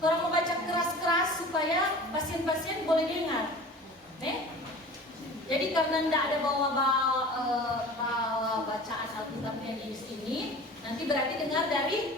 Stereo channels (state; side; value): normal; both; correlation 0.40